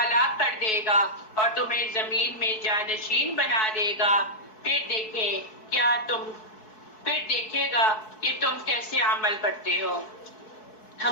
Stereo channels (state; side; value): late; right; 4.6 ms